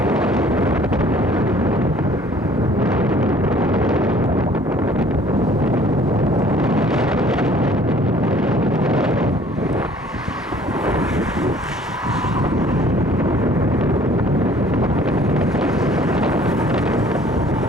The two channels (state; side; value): normal; both; correlation 0.55